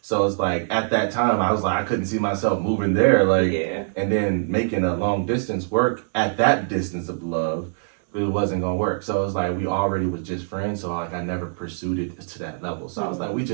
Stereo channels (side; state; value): left; silent; 62 dB below the other